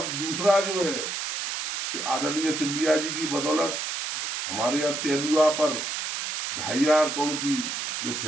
दूसरा जो है, आदरणीय सिंधिया जी की बदौलत हमारे यहाँ तेंदुआ पर 2,500 करोड़ की जो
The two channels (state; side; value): noise; right; hiss, 4 dB below the sound